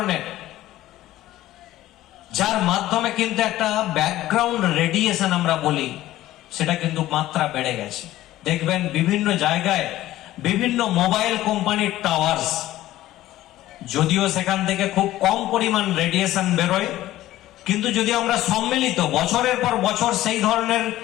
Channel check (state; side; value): quieter; right; 15.0 dB